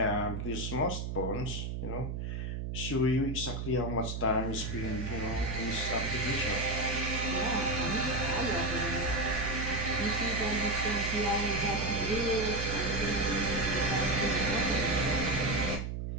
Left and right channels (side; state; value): right; noise; hum, 4 dB below the sound